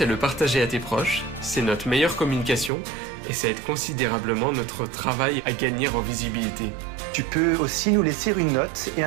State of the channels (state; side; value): drops out; left; at 2.7 s